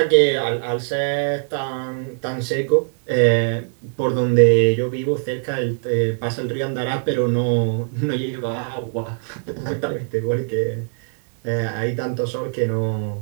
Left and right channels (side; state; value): left; silent; digital silence